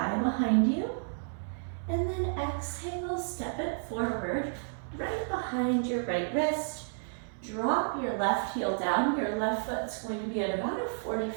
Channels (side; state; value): left; silent; 57 dB below the other